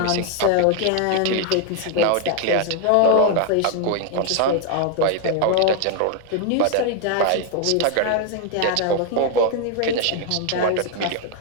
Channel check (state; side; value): different; both; correlation 0.00